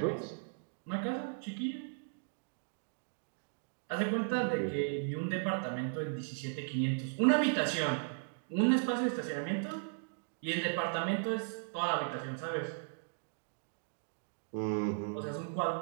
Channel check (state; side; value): silent; left; digital silence